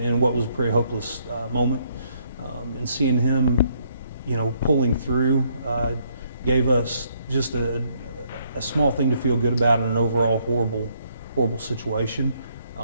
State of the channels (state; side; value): inverted; both; correlation -0.70